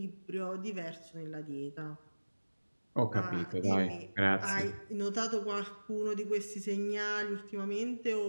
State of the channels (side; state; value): both; inverted; correlation -1.00